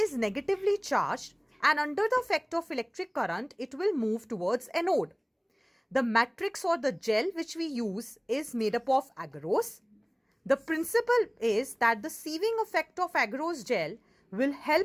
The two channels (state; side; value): identical; both; correlation 1.00